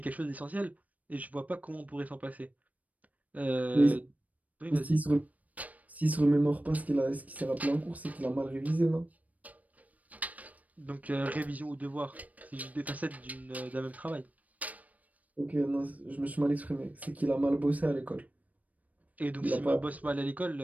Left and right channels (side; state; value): left; late; 0.072 ms